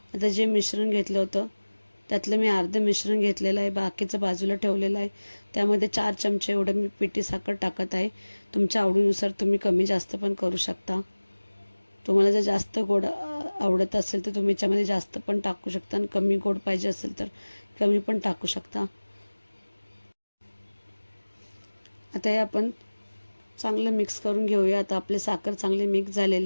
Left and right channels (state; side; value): inverted; both; correlation -1.00